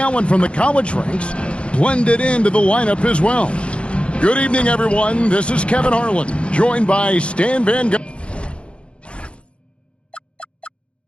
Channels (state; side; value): late; right; 0.059 ms